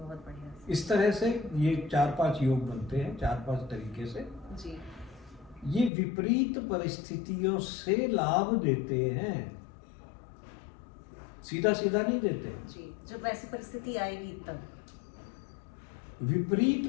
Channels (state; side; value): drops out; right; at 5.9 s